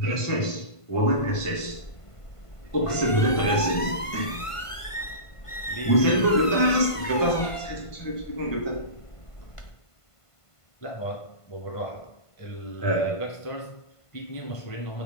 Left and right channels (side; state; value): right; late; 1.5 ms